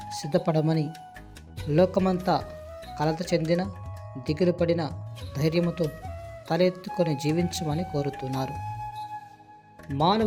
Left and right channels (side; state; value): both; identical; correlation 1.00